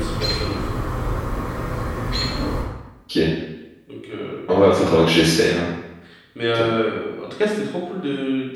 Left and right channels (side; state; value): both; identical; correlation 1.00